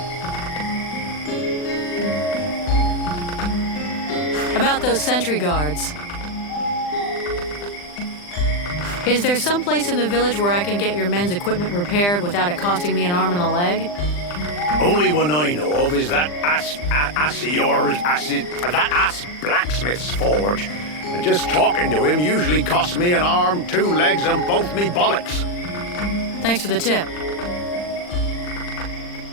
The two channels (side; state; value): right; late; 40 ms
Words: About those sentry guards. Is there some place in the village where I can get your men's equipment repaired without it costing me an arm and a leg? Only one I know of is that ass blacksmith's forge. And just talking to him usually costs me an arm, 2 legs, and both me bollocks. Thanks for the tip.